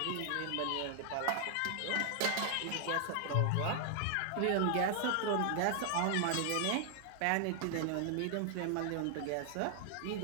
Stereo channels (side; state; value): both; different; correlation 0.00